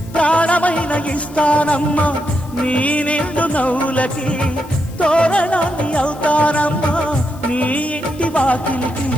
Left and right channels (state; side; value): noise; left; hiss, 23 dB below the sound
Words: ప్రాణమైన ఇస్తానమ్మా నీ నిండు నవ్వులకి తోరణాన్ని అవుతానమ్మా నీ ఇంటి వాకిలికి